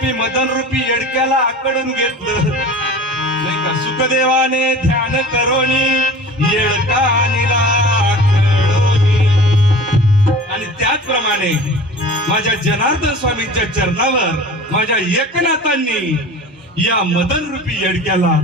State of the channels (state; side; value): normal; both; correlation 0.40